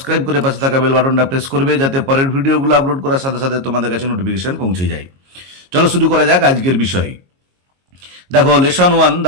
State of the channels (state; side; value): late; left; 22 ms